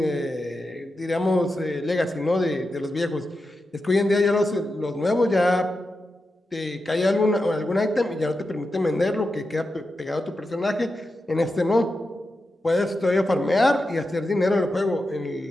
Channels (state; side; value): normal; both; correlation 0.90